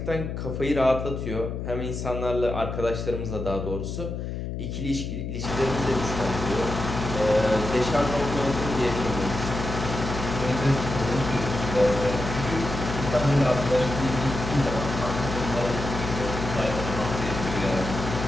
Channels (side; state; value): left; noise; hum, 5 dB below the sound